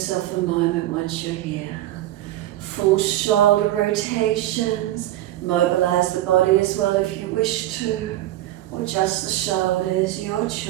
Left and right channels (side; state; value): left; quieter; 14.5 dB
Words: a moment once you're here. Full shoulder rotations, mobilize the body as well if you wish to, or just the shoulders, your